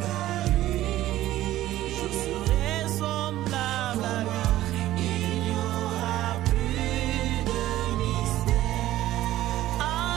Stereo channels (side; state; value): left; quieter; 14.5 dB